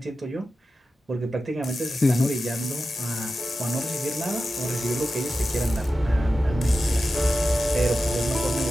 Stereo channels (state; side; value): normal; both; correlation 0.93